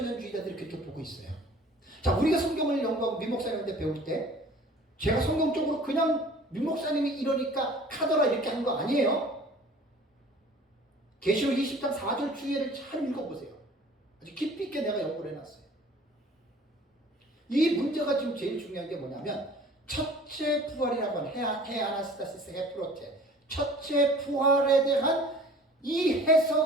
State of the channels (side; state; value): both; normal; correlation 0.48